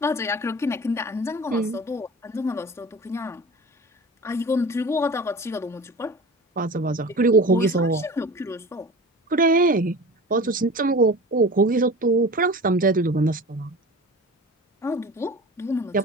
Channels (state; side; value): normal; both; correlation 0.36